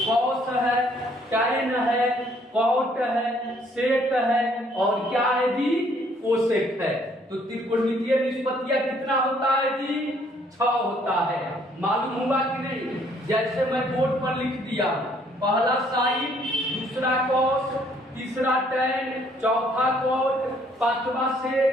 है, टैन है, कॉट है, सेक है और क्या है जी? कोसेक है। तो त्रिकोणमितीय निष्पत्तियां कितना होता है जी? 6 होता है। मालूम हुआ कि नहीं? जैसे मैं बोर्ड पर लिख दिया, पहला साइन, दूसरा कॉस, तीसरा टैन, चौथा कॉट, पांचवा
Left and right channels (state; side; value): normal; both; correlation 0.64